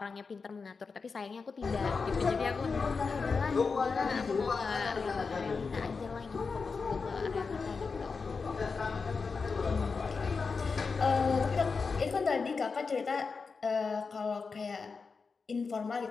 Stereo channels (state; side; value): quieter; right; 4.8 dB